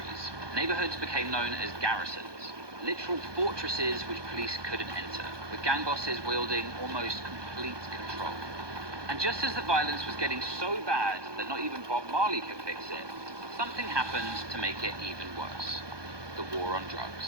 Neighborhoods became known as garrisons, literal fortresses which police couldn't enter, with gang bosses wielding almost complete control. And just as the violence was getting so bad that not even Bob Marley could fix it, something happened to make it even worse. The war on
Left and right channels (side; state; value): left; late; 1.2 ms